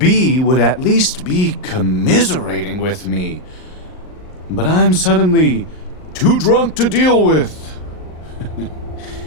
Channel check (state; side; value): late; right; 38 ms